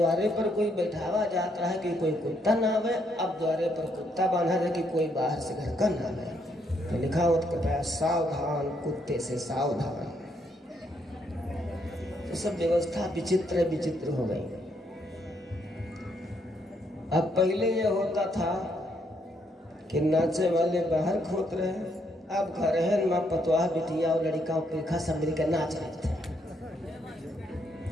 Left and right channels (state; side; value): normal; both; correlation 0.74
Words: पर कोई बैठावा जाता है कि कोई कुत्ता ना आवे, अब द्वारे पर कुत्ता बांधा है कि कोई बाहर से घर का ना आवे। तो लिखा होता है सावधान कुत्ते से सावधान। तो सब व्यवस्था विचित्र विचित्र हो गई। अब पहले ये होता था कि नाचे वाले बाहर खोत रहे, अब घर है माँ पतवाह बिटिया और लड़का पेखा सब मिलकर नाच रहे थे।